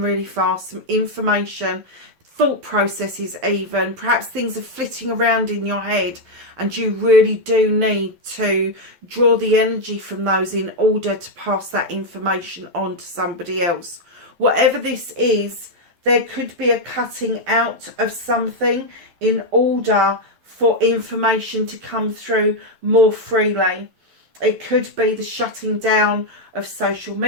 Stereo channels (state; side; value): late; left; 12 ms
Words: fast. Some information, thought processes even. Perhaps things are flitting around in your head and you really do need to draw the energy from those in order to pass that information on to somebody else. Whatever this is, there could be a cutting out of something in order for information to come through more freely. It could be the shutting down of social